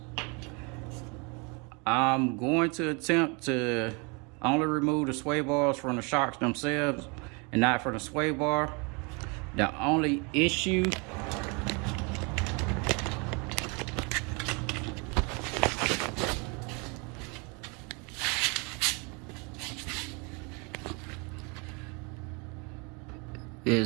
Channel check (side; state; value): left; quieter; 31.4 dB